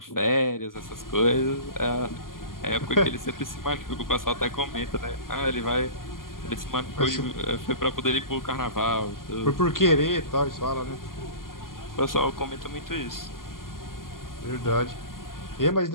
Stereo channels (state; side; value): late; right; 0.91 ms